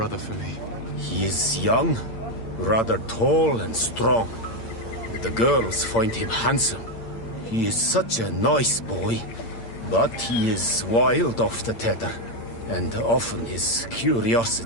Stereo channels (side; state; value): right; late; 8.7 ms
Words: for me? He is young, rather tall and strong. The girls find him handsome. He is such a nice boy, but he is wild off the tether, and often his